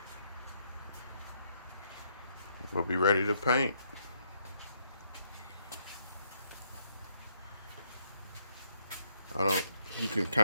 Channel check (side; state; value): both; inverted; correlation -0.73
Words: We'll be ready to paint. You can